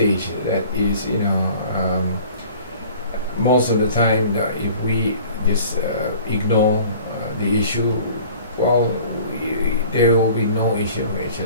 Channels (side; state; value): both; inverted; correlation -0.48